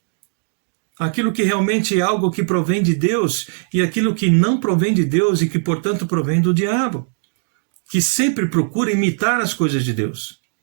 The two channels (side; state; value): left; silent; digital silence